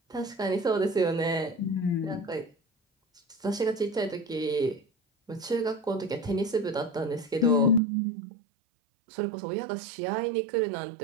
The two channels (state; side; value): drops out; left; at 7.8 s